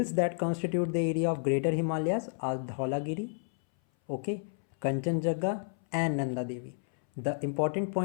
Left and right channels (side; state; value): right; silent; 57 dB below the other